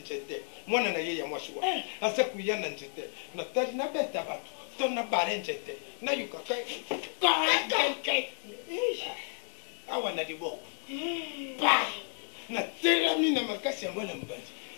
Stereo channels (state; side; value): silent; right; 56 dB below the other